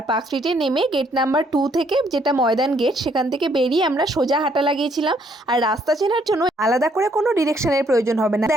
পার্ক স্ট্রিটে নেমে গেট নাম্বার 2 থেকে, যেটা ময়দান গেট, সেখান থেকে বেরিয়ে আমরা সোজা হাঁটা লাগিয়েছিলাম। আর রাস্তা চেনার জন্য আলাদা করে কোনো ডিরেকশনের প্রয়োজন হবে না।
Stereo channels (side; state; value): both; normal; correlation 0.68